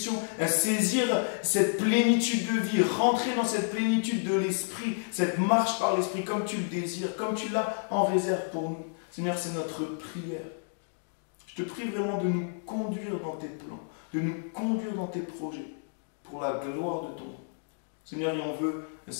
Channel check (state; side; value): silent; right; digital silence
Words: saisir cette plénitude de vie, rentrer dans cette plénitude de l'esprit, cette marche par l'esprit comme tu le désires, comme tu l'as en réserve pour nous. Seigneur, c'est notre prière. Je te prie vraiment de nous conduire dans tes plans, de nous conduire dans tes projets, pour la gloire de ton nom. Seigneur, et on veut